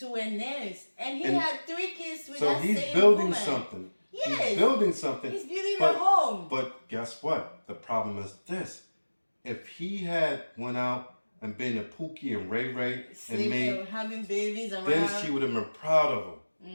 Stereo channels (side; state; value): both; inverted; correlation -1.00